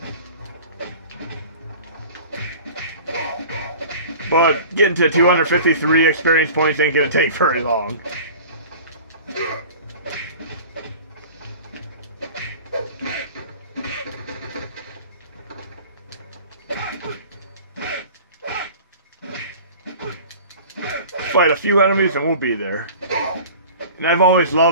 But getting to 253 experience points ain't gonna take very long. Fight a few enemies and we'll be there. And I've always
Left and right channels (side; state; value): both; inverted; correlation -0.41